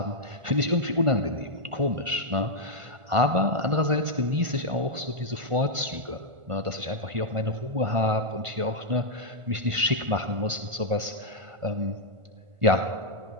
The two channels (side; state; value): left; late; 1.5 ms